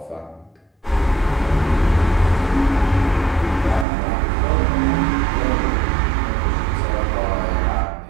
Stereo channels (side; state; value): left; drops out; at 3.9 s